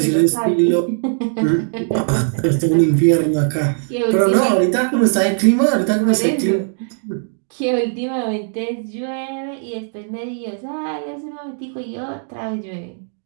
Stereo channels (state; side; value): silent; left; digital silence